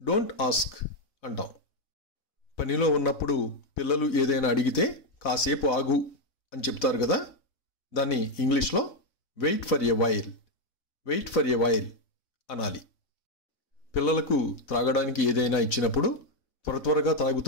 ఆస్క్ అంటాం. పనిలో ఉన్నప్పుడు పిల్లలు ఏదైనా అడిగితే కాసేపు ఆగు అని చెప్తారు కదా, దాన్ని ఇంగ్లీష్లో వెయిట్ ఫర్ ఎ వైల్ అనాలి. పిల్లలకు త్రాగడానికి ఏదైనా ఇచ్చినప్పుడు త్వరగా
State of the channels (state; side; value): late; right; 4.0 ms